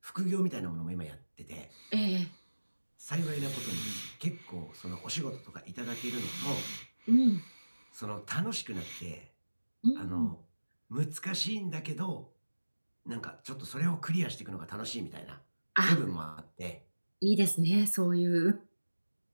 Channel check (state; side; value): inverted; both; correlation -1.00